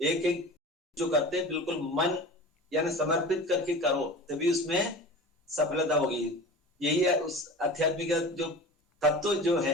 एक एक जो करते हैं बिल्कुल मन यानी समर्पित करके करो, तभी उसमें सफलता होगी। यही है उस आध्यात्मिक जो तत्व जो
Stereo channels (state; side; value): normal; both; correlation 0.36